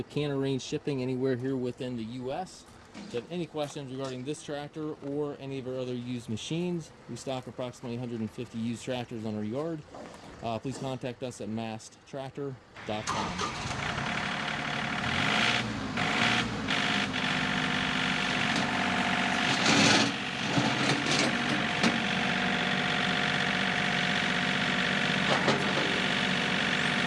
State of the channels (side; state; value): both; identical; correlation 1.00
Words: can arrange shipping anywhere here within the US. If you have any questions regarding this tractor or any of our other used machines, we stock approximately 150 used tractors on our yard. Please contact us at masttractor.com.